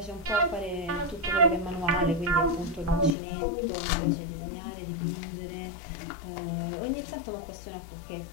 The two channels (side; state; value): right; drops out; at 3.1 s